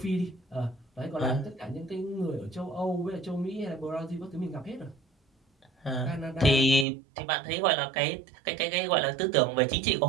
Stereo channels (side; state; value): left; drops out; at 6.9 s